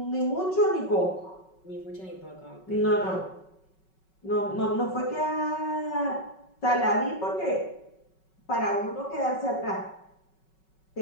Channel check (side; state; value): right; late; 5.3 ms